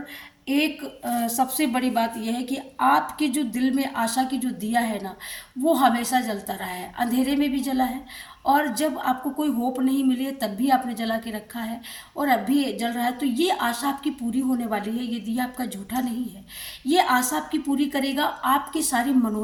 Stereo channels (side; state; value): both; identical; correlation 1.00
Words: एक सबसे बड़ी बात यह है कि आपके जो दिल में आशा की जो दिया है ना, वो हमेशा जलता रहा है, अंधेरे में भी जला है, और जब आपको कोई होप नहीं मिली है तब भी आपने जला के रखा है, और अब भी जल रहा है। तो ये आशा आपकी पूरी होने वाली है, ये दिया आपका झूठा नहीं है, ये आशा आपकी पूरी करेगा, आपकी सारी